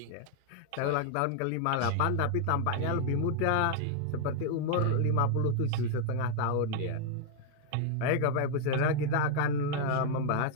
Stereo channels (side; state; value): both; different; correlation 0.00